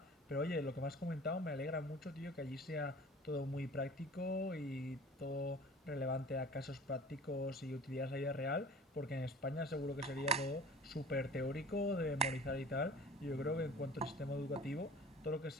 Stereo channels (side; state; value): both; normal; correlation 0.43